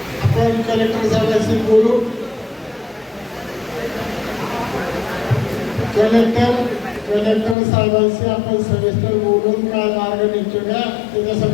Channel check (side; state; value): right; drops out; at 7.6 s